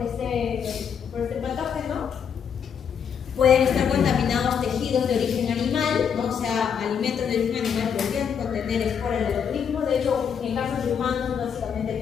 este patógeno. Pueden estar contaminados tejidos de origen animal, ¿no? O sea, alimentos de origen animal podrían contener esporas del botulismo, de hecho, en casos de humanos, básicamente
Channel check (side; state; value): right; quieter; 7.4 dB